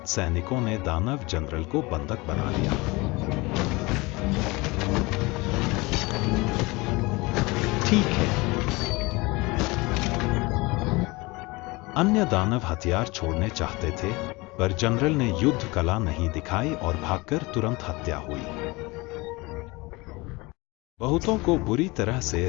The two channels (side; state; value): right; quieter; 23.8 dB